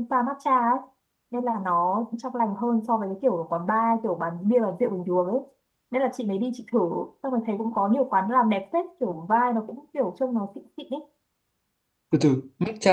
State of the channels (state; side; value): identical; both; correlation 1.00